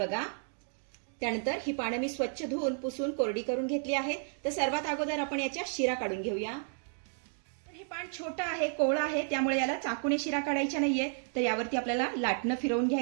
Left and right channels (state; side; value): silent; left; 56 dB below the other